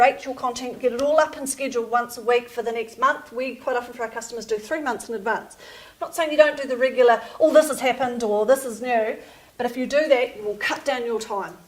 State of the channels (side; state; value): both; identical; correlation 1.00